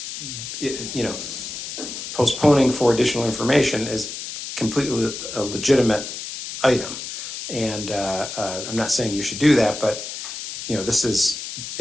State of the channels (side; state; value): left; noise; hiss, 8 dB below the sound